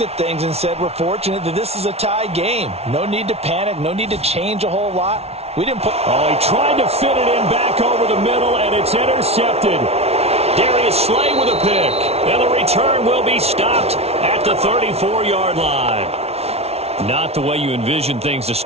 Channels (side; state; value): left; late; 0.30 ms